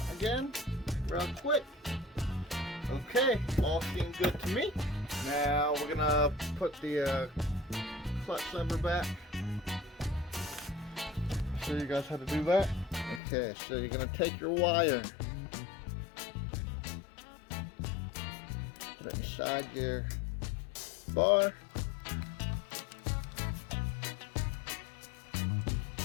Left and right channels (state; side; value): drops out; right; at 13.2 s